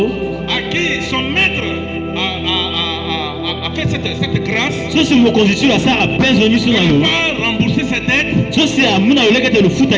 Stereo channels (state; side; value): identical; both; correlation 1.00